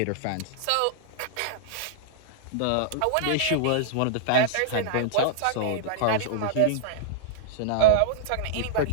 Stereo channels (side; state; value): both; different; correlation -0.02